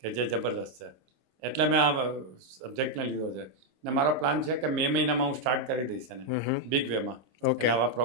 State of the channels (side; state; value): left; late; 26 ms